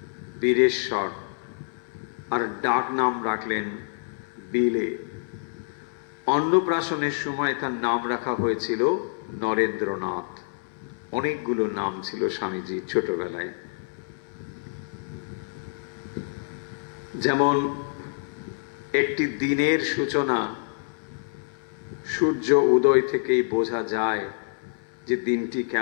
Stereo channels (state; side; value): silent; right; 60 dB below the other